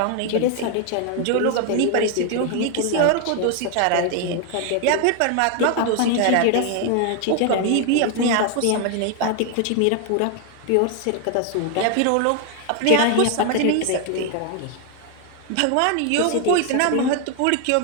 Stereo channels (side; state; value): both; different; correlation 0.00